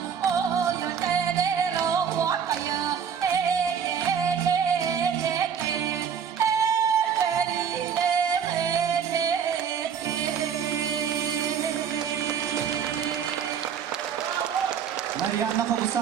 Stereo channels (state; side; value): quieter; left; 7.5 dB